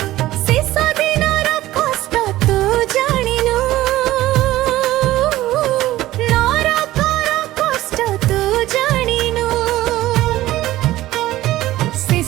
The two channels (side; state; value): left; quieter; 15.8 dB